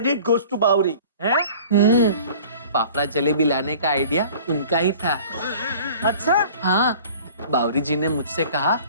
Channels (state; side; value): inverted; both; correlation -0.46